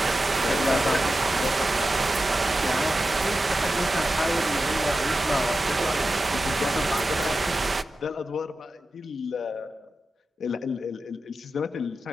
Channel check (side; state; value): both; normal; correlation 0.92